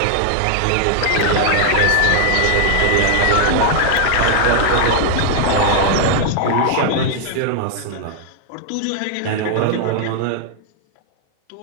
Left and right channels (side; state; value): both; different; correlation 0.00